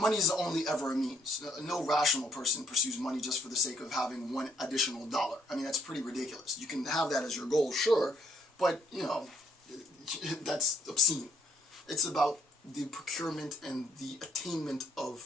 is only ever a means. No rational person pursues money just for the sake of having one additional dollar. That's pretty ridiculous. You can have that as your goal, sure, but, that's obscene. It's about the procurement and the attainment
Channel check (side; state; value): both; normal; correlation 0.68